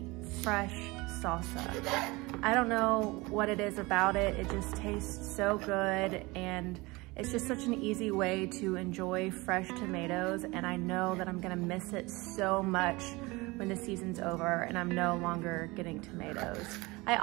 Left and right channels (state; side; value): quieter; left; 23.4 dB